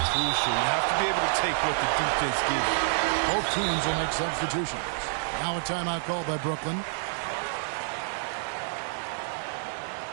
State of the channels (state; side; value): silent; left; 59 dB below the other